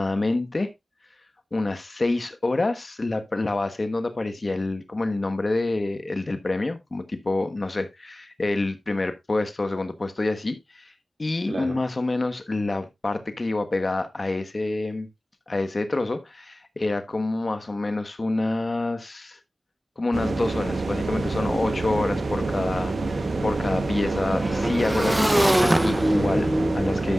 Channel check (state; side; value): normal; both; correlation 0.96